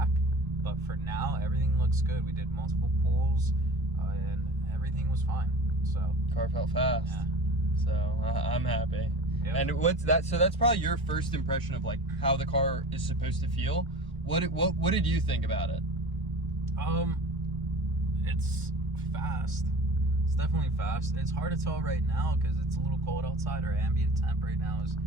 But for now, everything looks good. We did multiple pulls, and everything was fine. So car felt fast. Yeah. So I'm happy. Yep. And what's that? So that's probably your first impression of like how the car is supposed to feel. What did you think about it? It's fast. It's definitely fast. It's hard to tell right now because it's a little cold outside. Our ambient temp right now is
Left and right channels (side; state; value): both; normal; correlation 0.38